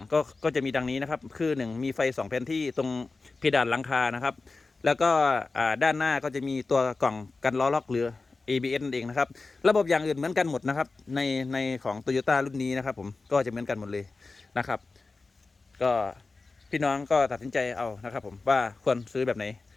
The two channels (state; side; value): quieter; right; 3.8 dB